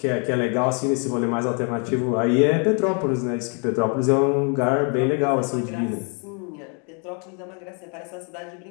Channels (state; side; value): quieter; right; 37.2 dB